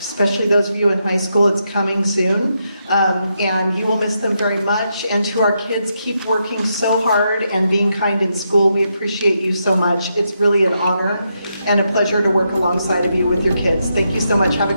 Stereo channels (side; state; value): both; inverted; correlation -0.82